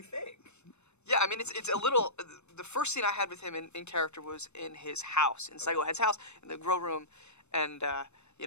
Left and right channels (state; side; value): late; right; 0.81 ms